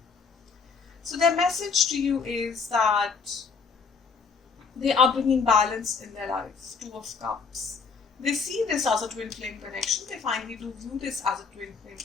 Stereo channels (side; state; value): right; quieter; 5.3 dB